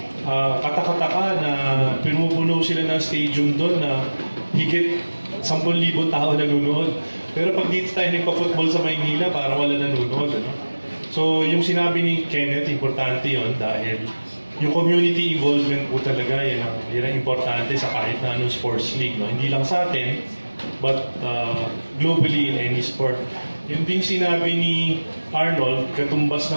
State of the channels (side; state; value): both; inverted; correlation -1.00